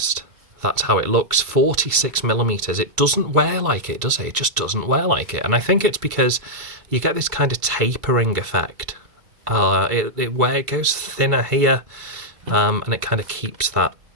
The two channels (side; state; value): left; late; 2.2 ms